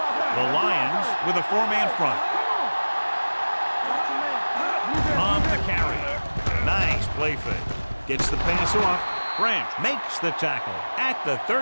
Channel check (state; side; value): inverted; both; correlation -1.00